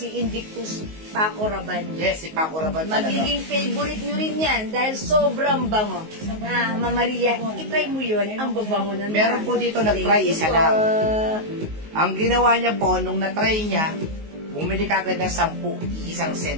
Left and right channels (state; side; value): late; left; 19 ms